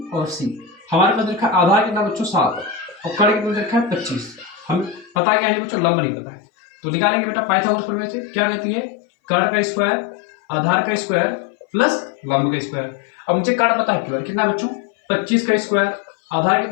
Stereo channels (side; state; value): right; drops out; at 5.1 s